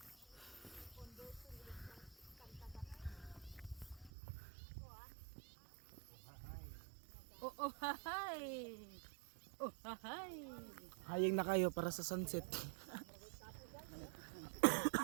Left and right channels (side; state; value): left; drops out; at 4.1 s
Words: Oh, hay. Oh, hay. Haying na kayo para sa sunset.